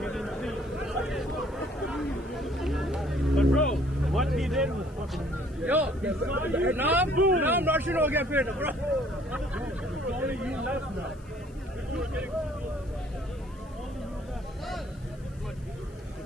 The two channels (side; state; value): left; noise; hiss, 29 dB below the sound